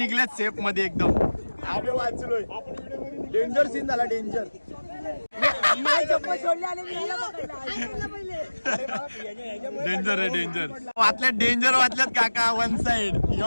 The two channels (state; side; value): inverted; both; correlation -1.00